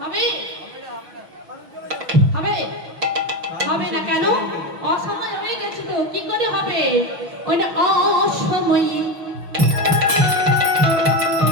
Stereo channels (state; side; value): late; left; 6.1 ms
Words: হবে? হবে না কেন? অসময় হয়ে গেছে তো, কি করে হবে? ওইটা অসময়ে